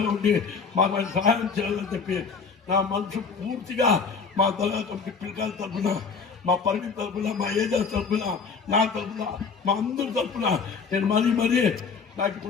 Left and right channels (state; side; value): quieter; right; 5.4 dB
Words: ఉండి మాకు ఆయన సహాయం చేయాలని చెప్పి నా మనసు పూర్తిగా మా దర్గా కమిటీ పిల్లకాయల తరఫున మా పరిమితి తరఫున మా ఏజా తరఫున నా తరఫున మా అందరి తరఫున నేను మరీ నాకు